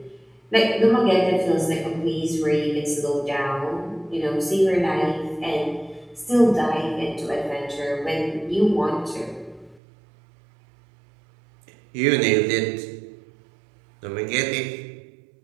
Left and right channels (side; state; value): left; drops out; at 9.8 s